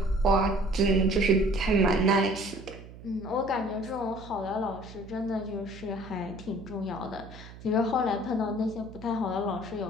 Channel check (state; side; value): noise; right; hum, 16 dB below the sound